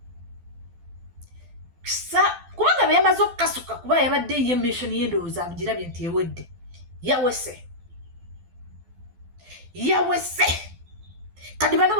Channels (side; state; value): left; late; 12 ms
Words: kubanga beyamaze okukasuka kuba yabadde ye mission y'endowooza agirabye nti ewedde yawese kati bano